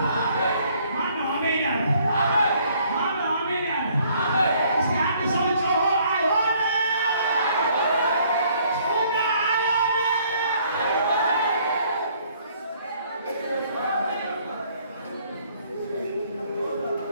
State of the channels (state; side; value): inverted; both; correlation -0.63